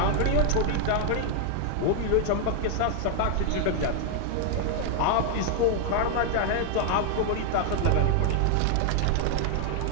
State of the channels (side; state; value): both; different; correlation 0.00